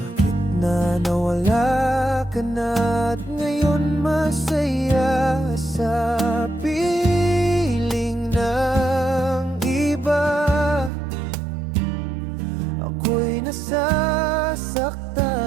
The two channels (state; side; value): drops out; left; at 10.9 s